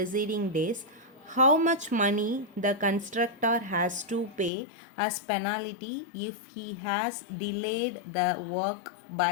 days. How much money the constructor has to pay as penalty if he has delayed the work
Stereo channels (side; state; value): right; drops out; at 4.5 s